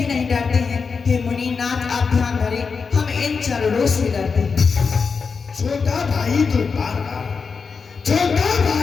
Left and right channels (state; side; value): quieter; right; 5.2 dB